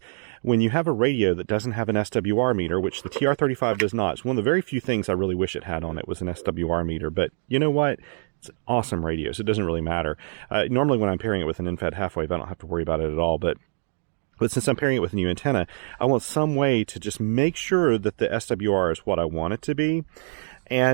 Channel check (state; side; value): silent; left; digital silence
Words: when you have a radio that doesn't have an SWR meter, which the TR-35 does not, it's one of the very few things I really wish it had on it was an SWR meter. But you know what? It's an awesome radio, so it doesn't really matter. Normally when I'm pairing it with an in-fed half wave, I don't have to worry about it at all. But since I'm pairing it with a new antenna, I want some way to just make sure that the SWR is what I want it to be.